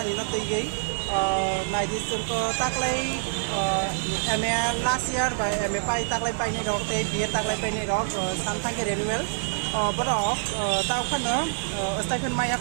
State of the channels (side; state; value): left; silent; digital silence